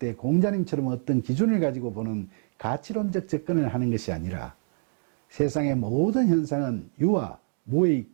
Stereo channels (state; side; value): silent; left; 61 dB below the other